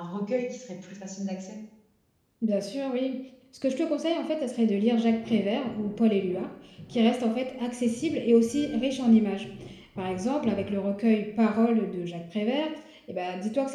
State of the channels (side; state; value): both; identical; correlation 1.00